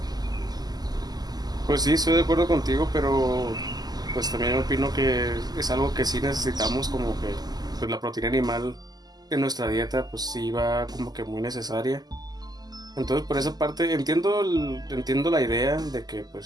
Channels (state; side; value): late; left; 0.20 ms